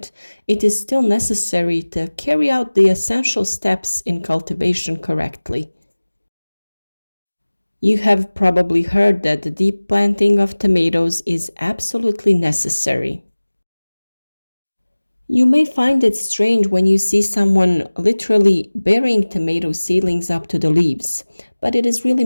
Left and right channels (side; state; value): both; inverted; correlation -1.00